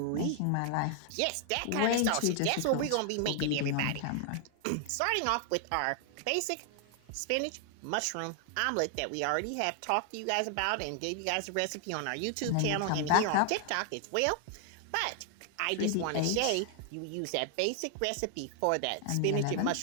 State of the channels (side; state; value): both; different; correlation 0.00